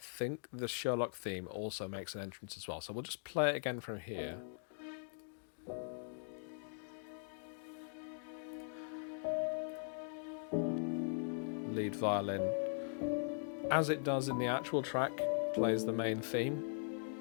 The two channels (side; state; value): right; silent; digital silence